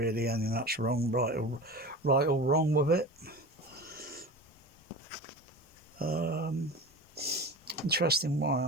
anything that's wrong, right or wrong with it. Interesting. Why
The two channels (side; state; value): both; normal; correlation 0.32